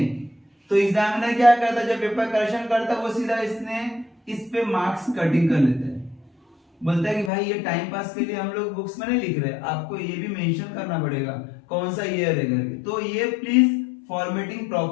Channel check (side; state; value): right; drops out; at 7.3 s